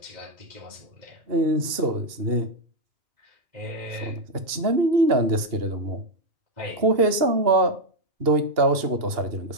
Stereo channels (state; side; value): late; left; 2.8 ms